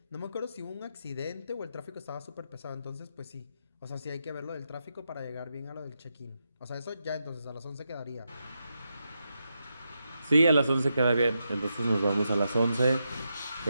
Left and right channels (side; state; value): both; inverted; correlation -0.85